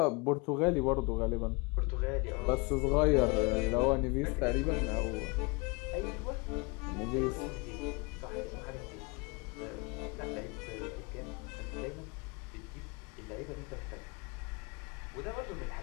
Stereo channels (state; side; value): quieter; right; 28.2 dB